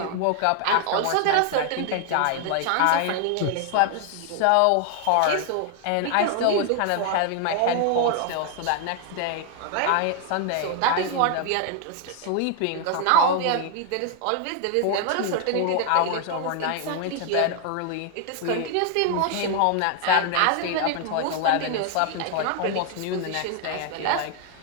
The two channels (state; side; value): different; both; correlation 0.00